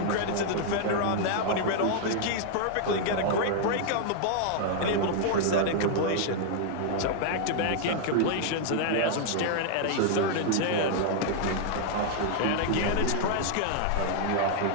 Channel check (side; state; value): both; different; correlation -0.01